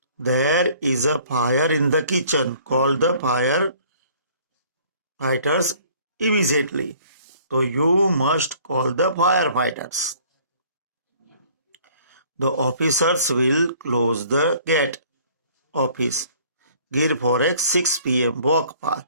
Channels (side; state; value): both; inverted; correlation -0.55